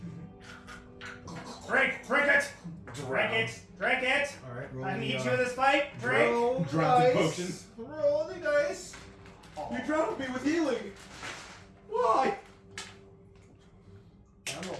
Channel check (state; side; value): identical; both; correlation 1.00